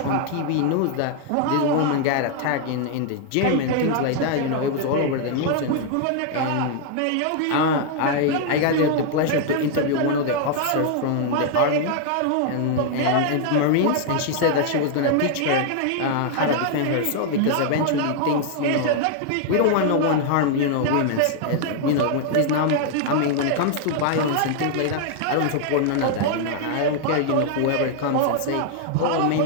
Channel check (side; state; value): both; different; correlation 0.00